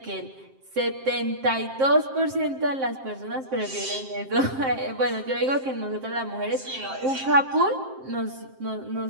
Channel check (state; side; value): late; left; 7.6 ms